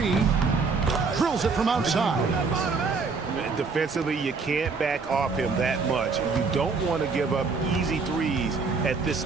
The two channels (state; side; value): quieter; left; 4.6 dB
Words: Drills it from outside. Defensively, you can't back off him that much. You don't want to give up easy threes at this